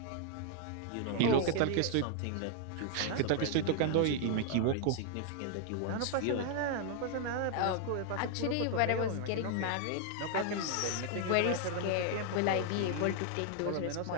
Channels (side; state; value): both; different; correlation 0.00